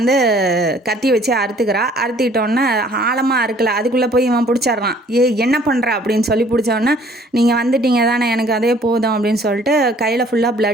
கத்தி வச்சு அறுத்துக்கிறா. அறுத்துக்கிட்டோன்னே ஆழமாக அறுக்கலை, அதுக்குள்ளே போய் இவன் பிடிச்சிட்றான். என்ன பண்ணுற அப்படின்னு சொல்லி பிடிச்சோன்னே, நீங்கள் வந்துட்டீங்க தானே எனக்கு அதே போதும் அப்படின்னு சொல்லிட்டு கையில் ஃபுல்லாக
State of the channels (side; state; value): both; normal; correlation 0.57